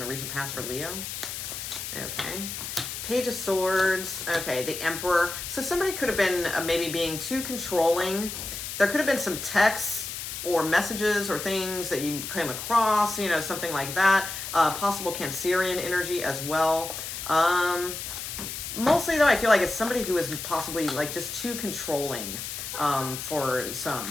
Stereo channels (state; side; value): noise; left; hiss, 7 dB below the sound